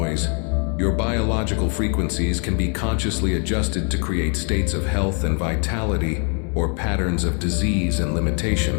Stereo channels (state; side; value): quieter; right; 39.1 dB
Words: your biological frequencies can be consciously adjusted to create states of health and vitality or patterns of disease and